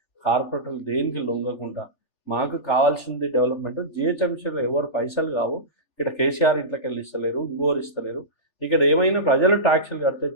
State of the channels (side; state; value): right; late; 3.4 ms